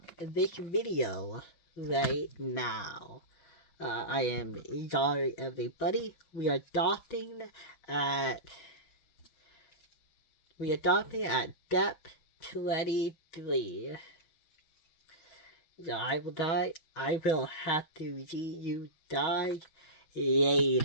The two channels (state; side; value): late; right; 6.1 ms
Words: this video right now. I am sorry everybody. We are stopping at depth 23. So I will die. I will have to see you die